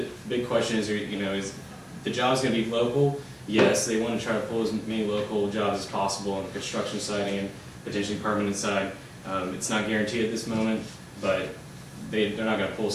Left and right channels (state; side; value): identical; both; correlation 1.00